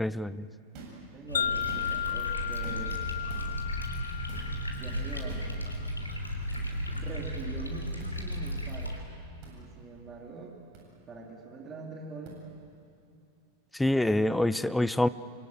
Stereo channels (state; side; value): normal; both; correlation 0.24